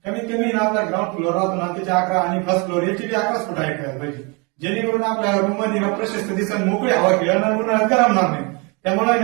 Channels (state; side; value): quieter; left; 30.7 dB